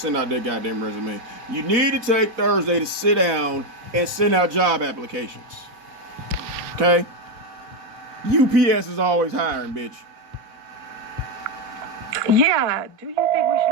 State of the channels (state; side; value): late; left; 4.2 ms